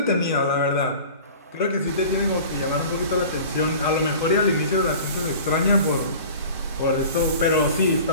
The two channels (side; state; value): both; inverted; correlation -0.41